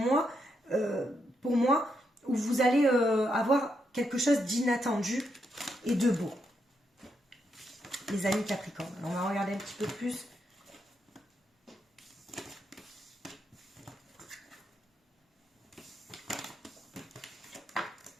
pour moi, où vous allez avoir quelque chose d'inattendu et de beau. Les amis Capricorne. Alors, on va regarder un petit peu plus.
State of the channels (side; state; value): both; normal; correlation 0.80